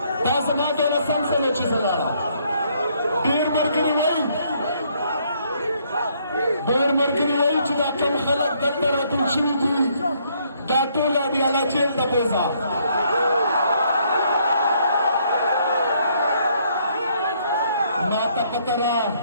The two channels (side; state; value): both; inverted; correlation -0.68